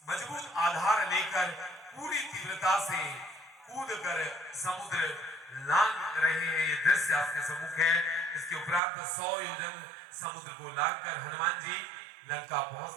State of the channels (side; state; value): left; drops out; at 8.8 s